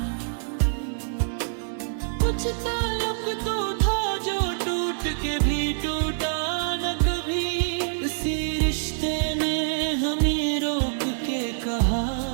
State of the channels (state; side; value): silent; left; digital silence